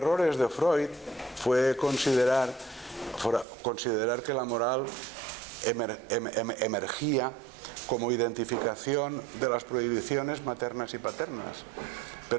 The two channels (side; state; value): left; drops out; at 3.5 s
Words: de Freud fue considerar que la moral emergía como identificación de las prohibiciones maternas y paternas,